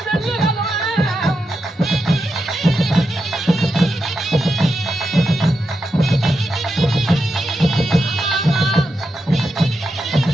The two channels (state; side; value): normal; both; correlation 0.87